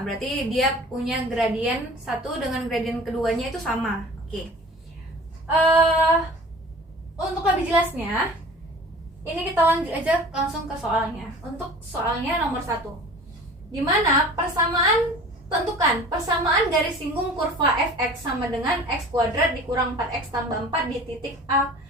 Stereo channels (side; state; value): both; normal; correlation 0.43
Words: berarti dia punya gradien 1 dengan gradien keduanya itu sama. Oke. Untuk lebih jelasnya, ini kita lanjut aja langsung ke soalnya. Untuk soalnya nomor 1, dimana tentukan persamaan garis singgung kurva fx sama dengan x kuadrat dikurang 4x tambah 4 di titik A